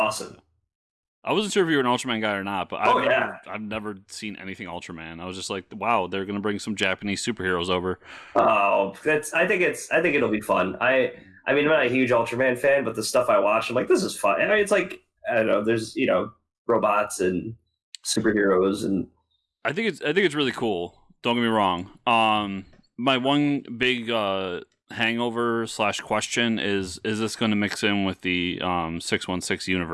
I wasn't sure if you were an Ultraman guy or not, but I've never seen anything Ultraman. I was just like, wow, they're going to bring some Japanese superheroes over. Oh, I think it'll be fun. I I mean, I'm not a huge Ultraman fan, but the stuff I watch, I'm like, this is fun. I mean, it's like, I don't know, there's, robots and superheroes, and I think it's really cool. Don't get me wrong. My one big hangover / question is this going to mix in with the 616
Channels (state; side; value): identical; both; correlation 1.00